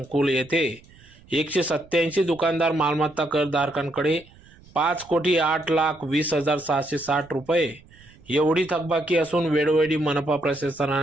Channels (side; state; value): right; noise; rumble, 26 dB below the sound